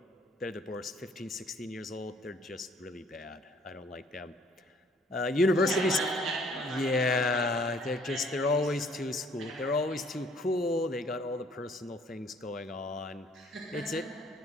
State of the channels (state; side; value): normal; both; correlation 0.59